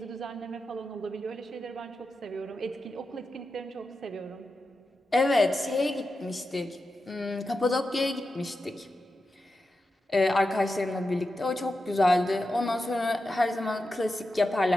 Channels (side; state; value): both; normal; correlation 0.90